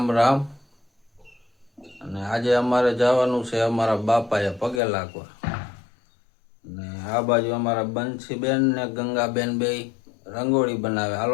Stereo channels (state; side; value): drops out; right; at 4.8 s